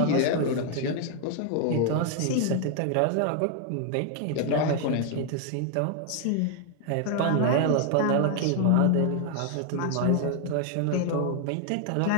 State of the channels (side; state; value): both; different; correlation 0.00